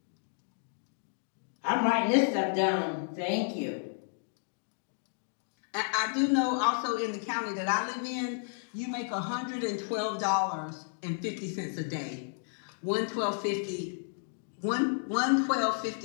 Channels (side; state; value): right; silent; digital silence